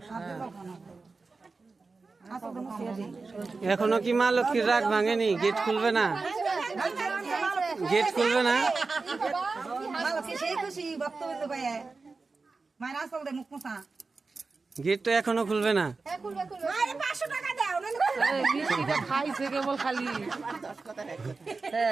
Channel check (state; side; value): quieter; left; 4.1 dB